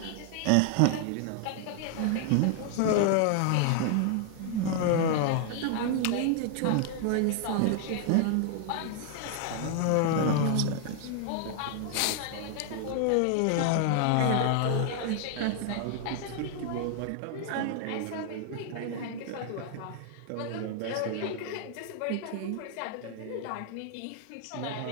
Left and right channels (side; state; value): both; different; correlation 0.00